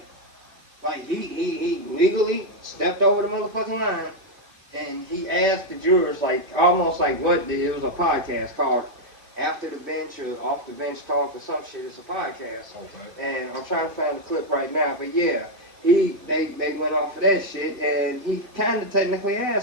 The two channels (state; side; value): late; left; 1.9 ms